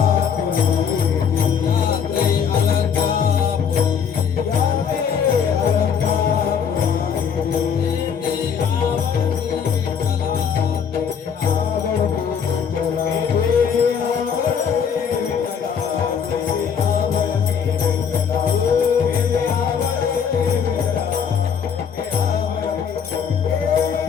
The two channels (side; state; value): right; quieter; 7.2 dB